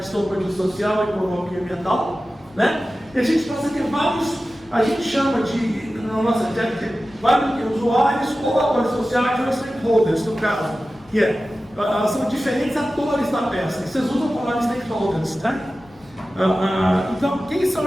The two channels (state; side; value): noise; left; rumble, 28 dB below the sound